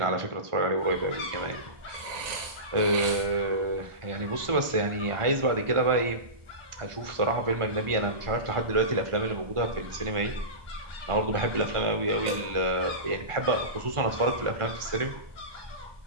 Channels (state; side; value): late; left; 1.4 ms